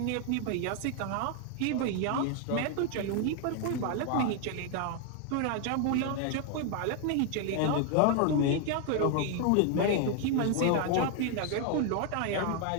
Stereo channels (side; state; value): both; different; correlation 0.00